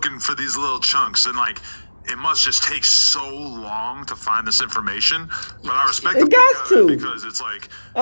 for these little chunks. And like, it must just take so long to find this information. But I respect It them got for it to. because it's like,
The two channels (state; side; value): inverted; both; correlation -1.00